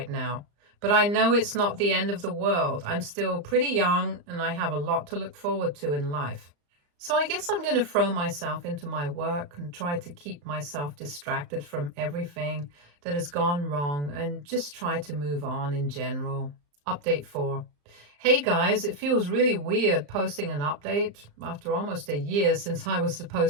now, but I know it's not the end of the world. I'm still pretty young and I have a lot to look forward to in life. So I guess I'm going to throw myself into my work and try to keep myself distracted from everything that has gone wrong and just try to move on in general. Update 4. Hey guys, it feels really weird posting an update after almost a year since I was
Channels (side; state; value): left; late; 35 ms